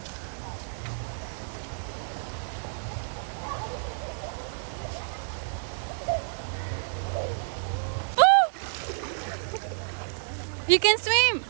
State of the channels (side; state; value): left; silent; digital silence